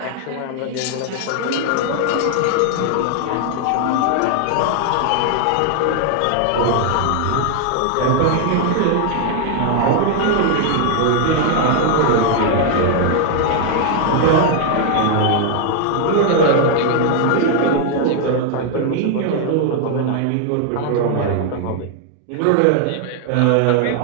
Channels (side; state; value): both; different; correlation 0.00